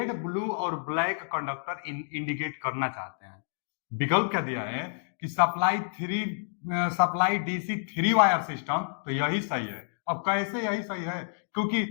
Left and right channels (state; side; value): silent; right; digital silence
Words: ब्लू और ब्लैक कंडक्टर इंडिकेट करना चाहते हैं। विकल्प क्या दिया है कि सप्लाई डीसी 3 वायर सिस्टम, तो यही सही है। अब कैसे यही सही है, क्योंकि